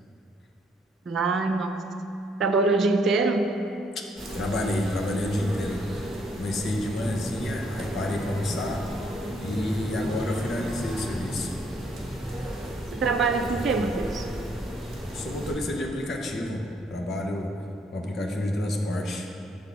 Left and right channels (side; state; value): both; normal; correlation 0.69